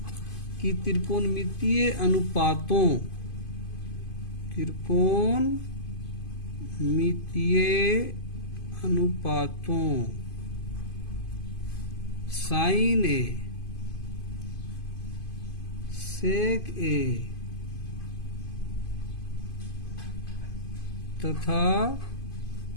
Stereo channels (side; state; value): right; late; 2.5 ms